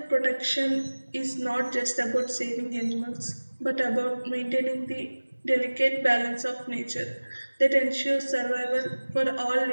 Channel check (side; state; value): both; inverted; correlation -1.00